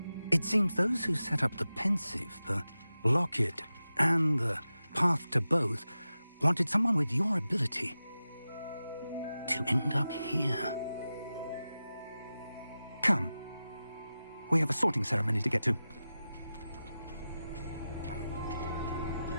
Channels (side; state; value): both; inverted; correlation -0.93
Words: It seems those who set up the pensive, the locket, and the path to both wanted someone with your ability to end up here. Come. We have a sorting ceremony to get to.